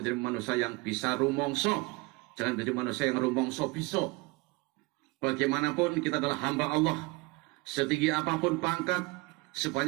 manusia yang bisa rumongso, jangan menjadi manusia yang rumongso biso. Bagaimanapun kita adalah hamba Allah. Setinggi apapun pangkat,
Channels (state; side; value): quieter; left; 24.8 dB